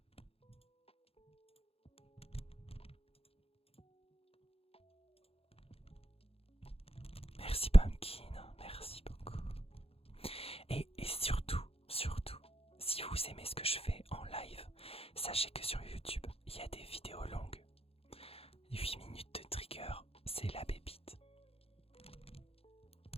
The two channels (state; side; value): late; right; 0.28 ms